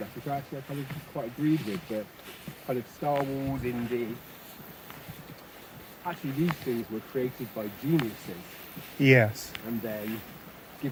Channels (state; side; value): identical; both; correlation 1.00